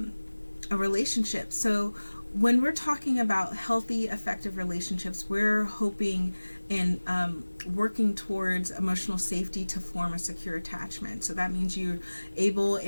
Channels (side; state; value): both; inverted; correlation -1.00